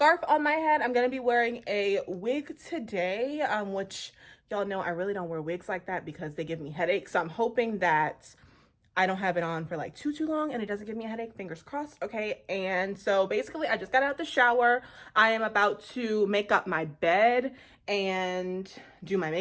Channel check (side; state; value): both; identical; correlation 1.00